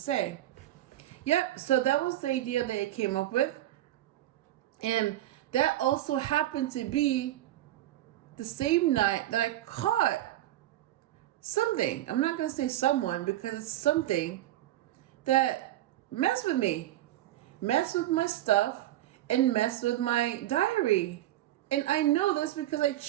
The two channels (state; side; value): quieter; left; 14.3 dB